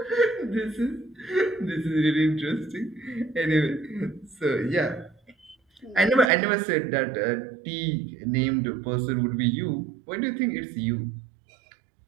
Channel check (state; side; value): drops out; left; at 6.2 s